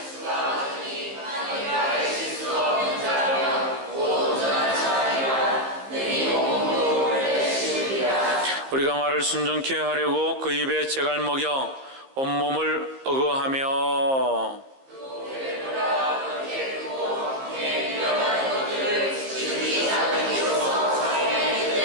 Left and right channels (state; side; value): late; left; 15 ms